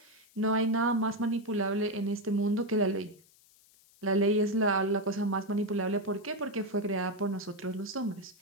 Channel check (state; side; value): noise; left; hiss, 29 dB below the sound